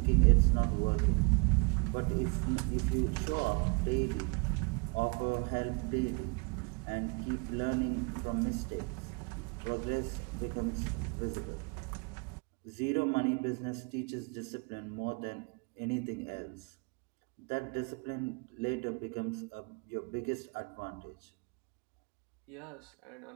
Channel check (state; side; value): quieter; left; 32.3 dB